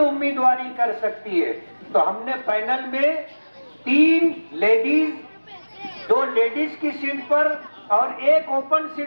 कर सकती है। तो हमने पैनल में 3 लेडीज, 2 लेडीज की सीट पर और 1 ओपन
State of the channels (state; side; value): inverted; both; correlation -1.00